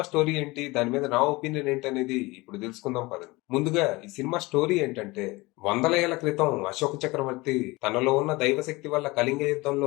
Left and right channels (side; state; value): right; quieter; 22.5 dB